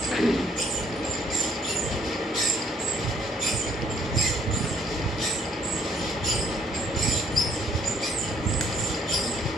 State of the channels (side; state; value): both; normal; correlation 0.65